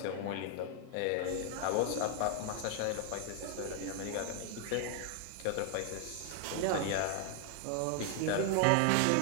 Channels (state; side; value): different; both; correlation 0.00